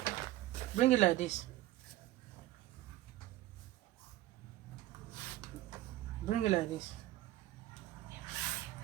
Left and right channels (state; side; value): quieter; left; 15.6 dB